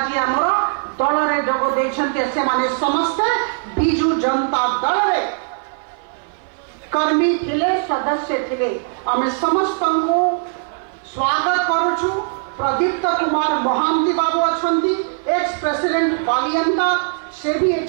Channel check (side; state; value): left; silent; 58 dB below the other